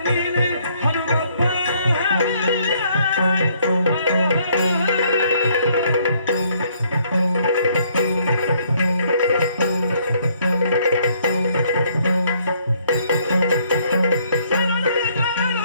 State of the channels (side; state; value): both; inverted; correlation -0.66